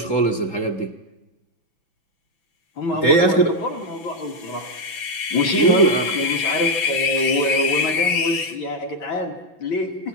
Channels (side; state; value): right; late; 6.0 ms